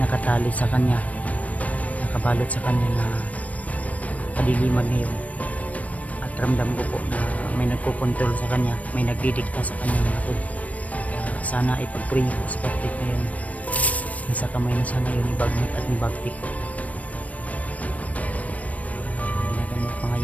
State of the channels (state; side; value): late; right; 0.071 ms